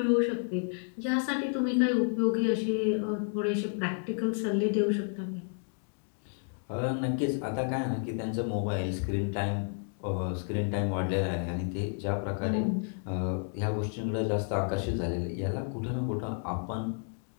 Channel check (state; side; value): silent; right; 57 dB below the other